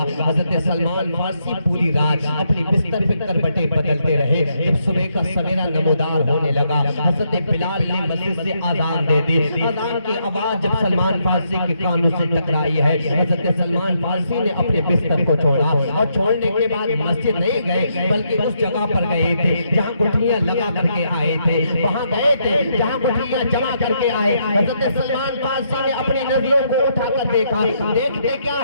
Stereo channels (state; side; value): inverted; both; correlation -0.77